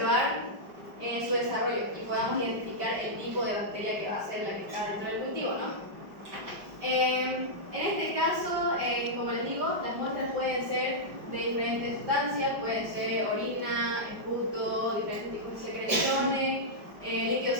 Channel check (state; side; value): late; left; 5.1 ms